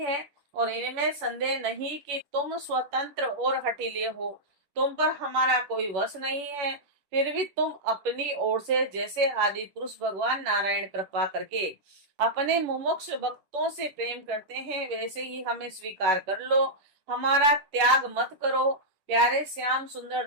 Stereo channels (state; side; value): late; left; 11 ms